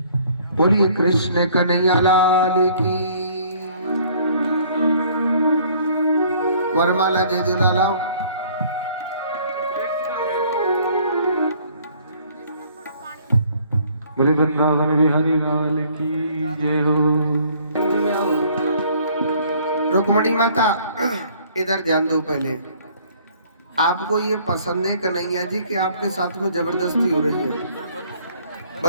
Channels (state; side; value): inverted; both; correlation -0.58